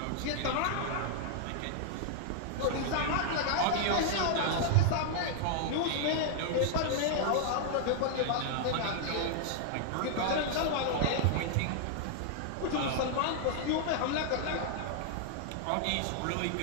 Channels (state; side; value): different; both; correlation -0.01